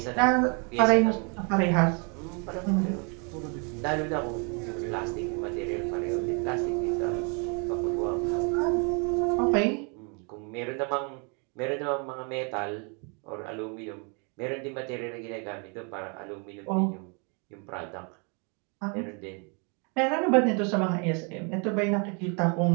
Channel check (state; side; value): quieter; left; 35.4 dB